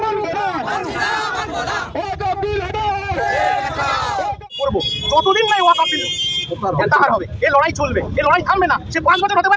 যতদিন নাই ওয়াকফ বিল হবে, এই লড়াই চলবে, এই লড়াই থামবে না। সে 5 বছর হতে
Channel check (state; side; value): identical; both; correlation 1.00